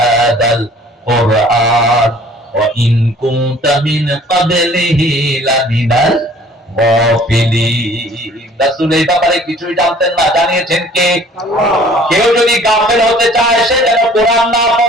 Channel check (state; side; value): normal; both; correlation 0.53